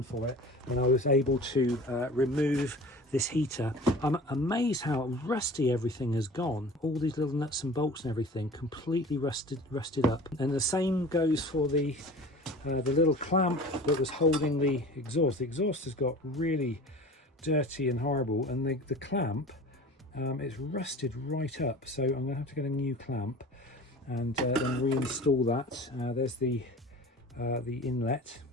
for it, and I was able to remove this heater. I'm amazed how rusty everything has gone. All these little nuts and bolts and everything completely rusted up. And the same goes for the little clamp that was holding the exhaust. The exhaust has got really dirty and horrible, and the clamp, it's rusted right up, so I'm gonna have to get a new clamp. and then reinstall that. There's the inlet.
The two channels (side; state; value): both; normal; correlation 0.40